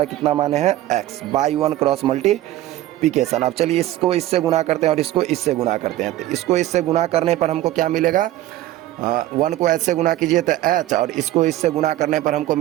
कितना मान है, x बाई 1 क्रॉस मल्टीप्लिकेशन। अब चलिए इसको इससे गुणा करते हैं और इसको इससे गुणा करते हैं। तो इसको इससे गुणा करने पर हमको क्या मिलेगा, 1 को h से गुणा कीजिए तो h, और इसको इससे गुणा करने पर हमको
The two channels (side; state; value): left; quieter; 14.8 dB